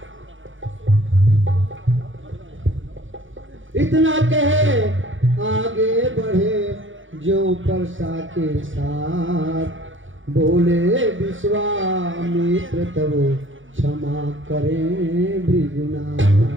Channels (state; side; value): late; left; 0.57 ms